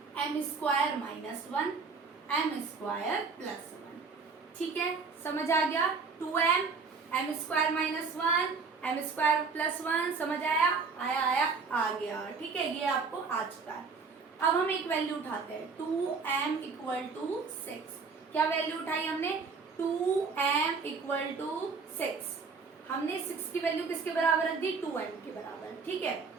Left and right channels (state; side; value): quieter; left; 4.8 dB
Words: m square minus 1, m square plus 1। ठीक है, समझ आ गया। 2m, m square minus 1, m square plus 1, समझ आया, आया आ गया। ठीक है, ये आपको आ चुका है। अब हम एक वैल्यू उठाते हैं, 2m इक्वल टू 6। क्या वैल्यू उठाई हमने, 2m इक्वल टू 6। हमने 6 की वैल्यू किसके बराबर रख दी, 2m के बराबर। ठीक है,